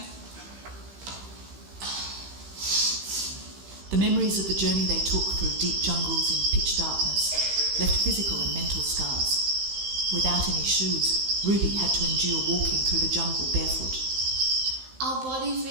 the memories of the journey they took through deep jungles in pitch darkness left physical and mental scars. Without any shoes, Ruby had to endure walking through the jungle barefoot. Our bodies,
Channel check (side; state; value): left; late; 15 ms